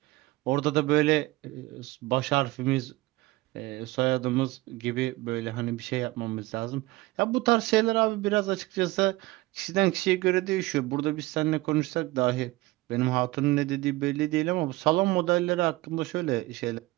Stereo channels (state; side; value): quieter; left; 19.9 dB